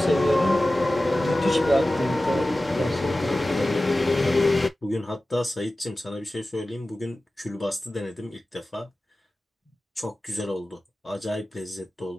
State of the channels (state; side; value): normal; both; correlation 0.96